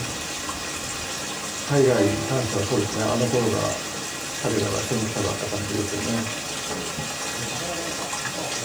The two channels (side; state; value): left; noise; hiss, 20 dB below the sound